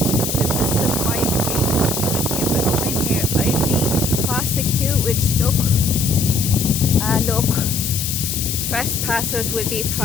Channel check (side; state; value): left; noise; hiss, 2 dB below the sound